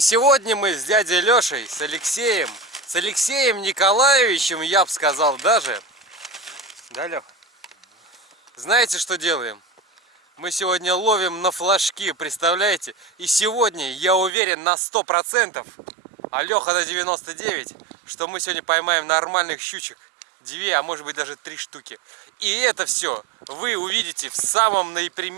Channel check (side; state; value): left; drops out; at 14.3 s